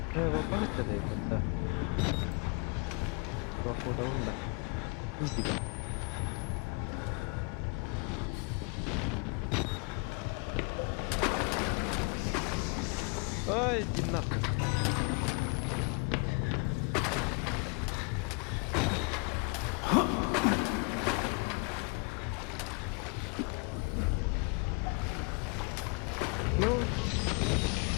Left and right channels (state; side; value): quieter; right; 32.2 dB